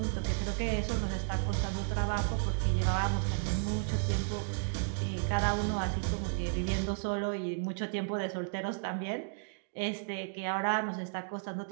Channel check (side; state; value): left; silent; digital silence